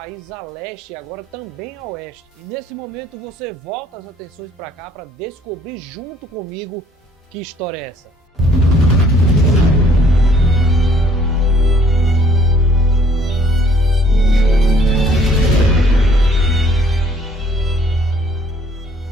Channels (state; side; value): normal; both; correlation 0.61